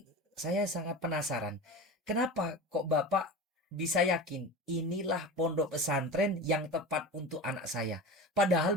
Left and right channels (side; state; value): both; normal; correlation 0.30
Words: saya sangat penasaran, kenapa kok Bapak bisa yakin inilah pondok pesantren yang tepat untuk anak saya?